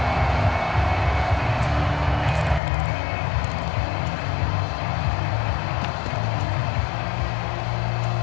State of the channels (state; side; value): drops out; right; at 2.6 s